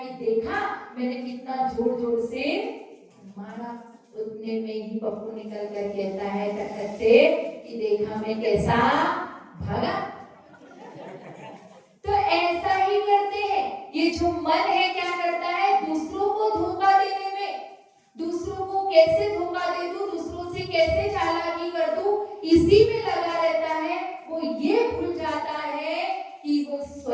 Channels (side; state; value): both; identical; correlation 1.00